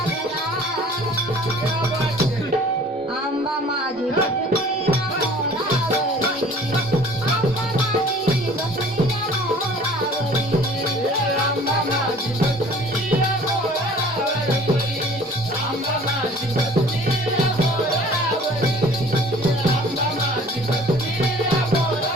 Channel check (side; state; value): both; normal; correlation 0.50